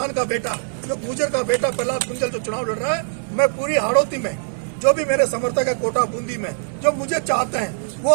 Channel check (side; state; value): left; silent; 65 dB below the other